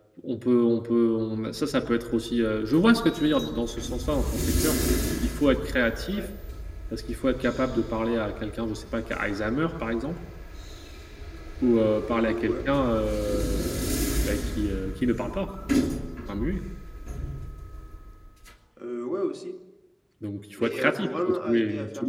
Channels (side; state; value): both; identical; correlation 1.00